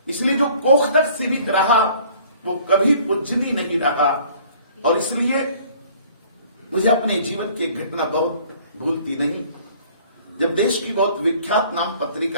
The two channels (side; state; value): both; inverted; correlation -0.54